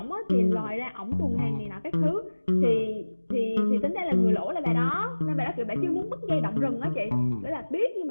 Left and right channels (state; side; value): inverted; both; correlation -1.00